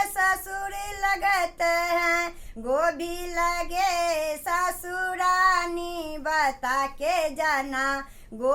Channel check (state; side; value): identical; both; correlation 1.00